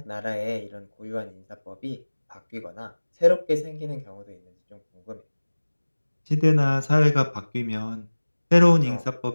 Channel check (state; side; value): inverted; both; correlation -1.00